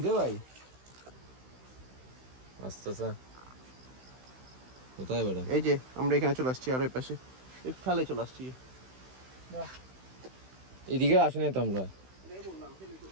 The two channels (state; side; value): late; left; 16 ms